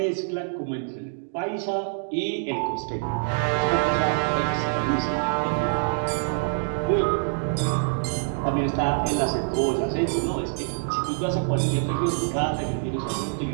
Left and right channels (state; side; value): silent; left; digital silence